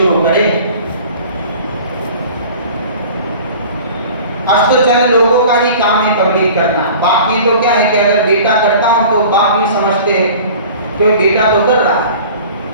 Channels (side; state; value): both; inverted; correlation -0.43